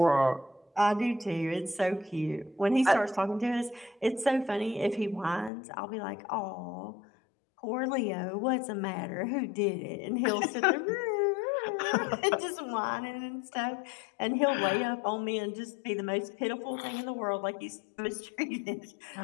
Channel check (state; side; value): drops out; right; at 5.5 s